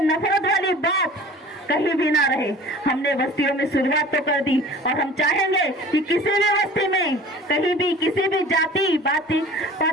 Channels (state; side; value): normal; both; correlation 0.44